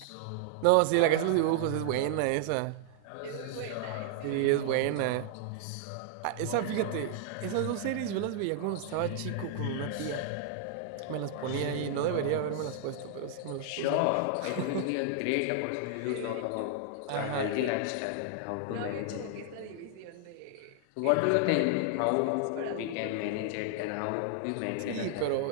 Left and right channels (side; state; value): both; different; correlation -0.01